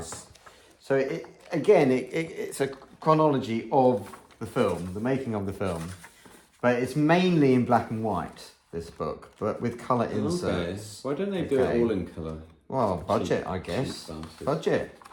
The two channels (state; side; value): identical; both; correlation 1.00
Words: So it's a chronology of the film, the making of the film. But it's mainly in black and white, this book, but with colour inserts. Why don't they do it all in colour? Well, budget, I guess. Budget.